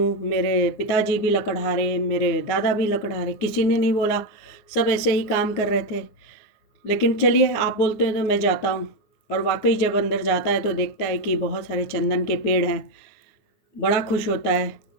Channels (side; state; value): right; late; 9.7 ms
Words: मेरे पिताजी भी लकड़हारे, मेरे दादा भी लकड़हारे, किसी ने नहीं बोला, सब ऐसे ही काम कर रहे थे। लेकिन चलिए, आप बोलते हैं तो मैं जाता हूँ। और वाकई जब अंदर जाता है तो देखता है कि बहुत सारे चंदन के पेड़ हैं। बड़ा खुश होता है,